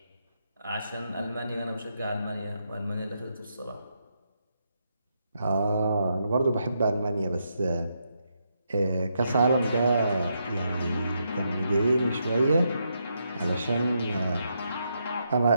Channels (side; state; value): both; inverted; correlation -0.81